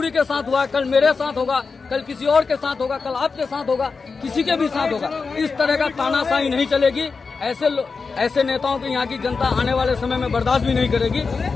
के साथ हुआ, कल मेरे साथ होगा, कल किसी और के साथ होगा, कल आपके साथ होगा, किसी के भी साथ होगा। इस तरह का तानाशाही नहीं चलेगी। ऐसे नेताओं की यहाँ की जनता आने वाले समय में बर्दाश्त भी नहीं करेगी,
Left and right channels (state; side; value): quieter; right; 4.7 dB